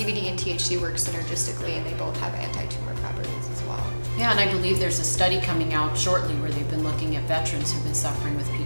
and THC work synergistically, and they both have anti-tumor properties as well. Yeah, and I believe there's a study coming out shortly where they've been looking at veterans who've been suffering with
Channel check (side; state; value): both; inverted; correlation -1.00